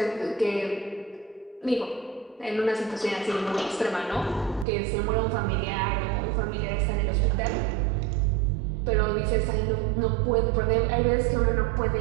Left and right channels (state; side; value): drops out; left; at 4.7 s